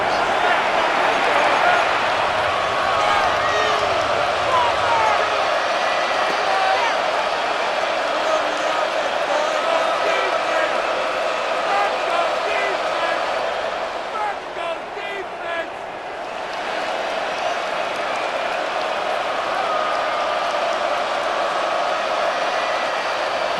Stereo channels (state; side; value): identical; both; correlation 1.00